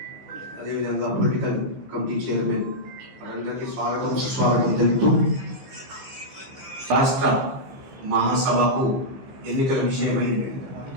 అదేవిధంగా పొలిటికల్ కమిటీ చైర్మన్ వారందరికీ స్వాగతం సుస్వాగతం తెలుపుతూ రాష్ట్ర మహాసభకు ఎన్నికల విషయమై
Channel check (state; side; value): late; left; 15 ms